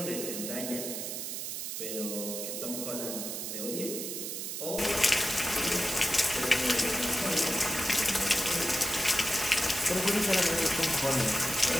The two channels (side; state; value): right; noise; hiss, 5 dB below the sound